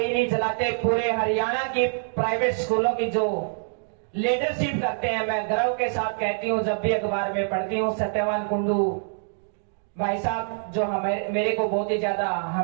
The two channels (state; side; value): silent; left; digital silence